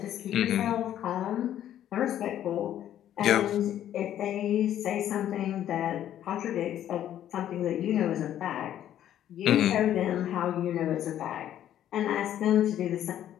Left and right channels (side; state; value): right; quieter; 11.3 dB